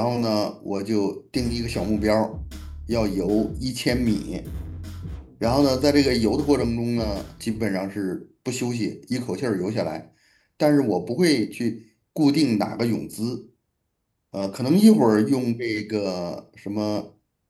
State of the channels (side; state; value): both; identical; correlation 1.00